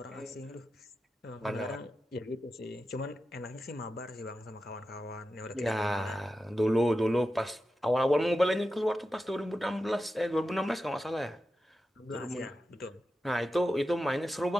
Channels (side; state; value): both; normal; correlation 0.91